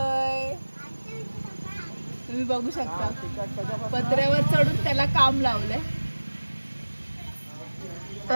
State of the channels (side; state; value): both; inverted; correlation -1.00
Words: तुम्ही बघू शकता पत्र्यावर चढून त्याला काम लावलंय.